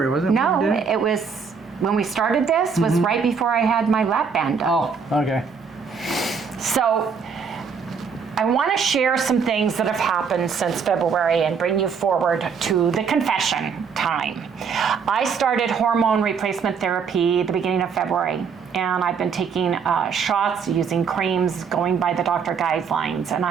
wasn't it? No, it was, when we started this, was right before I had my lap band done. Oh, okay. So, I want to share some things that have happened since February and bring you forward to the confession time. I started hormone replacement therapy at the beginning of February, and I've been taking shots, using creams, going by the doctor guidelines, and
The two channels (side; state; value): left; quieter; 6.0 dB